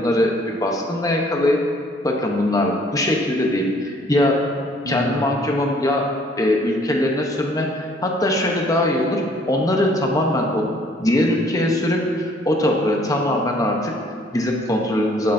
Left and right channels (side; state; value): both; normal; correlation 0.60